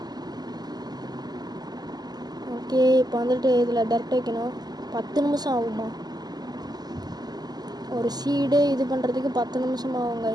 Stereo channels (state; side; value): late; left; 0.20 ms